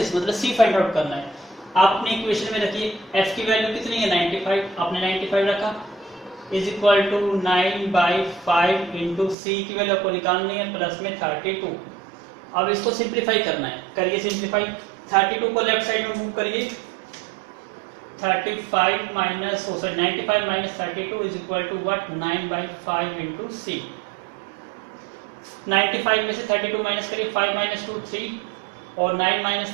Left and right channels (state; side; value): drops out; left; at 9.3 s